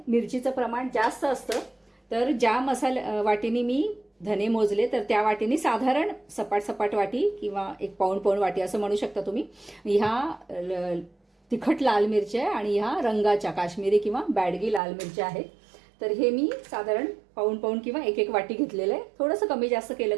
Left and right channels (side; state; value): left; drops out; at 14.8 s